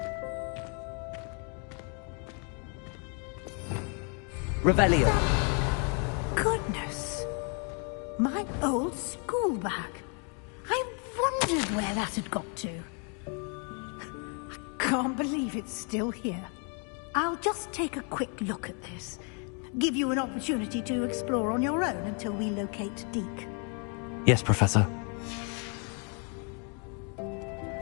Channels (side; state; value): right; quieter; 38.4 dB